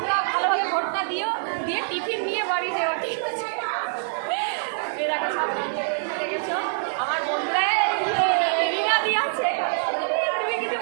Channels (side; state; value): left; silent; digital silence